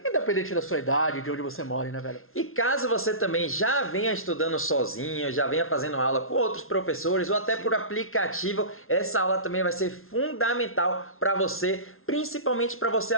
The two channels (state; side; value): late; right; 0.61 ms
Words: independente da sua idade, de onde você mora, né, velho? E caso você também já venha estudando sozinho, já venha fazendo aula com outros professores ou até por aplicativo, essa aula também vai ser fundamental para você, principalmente para você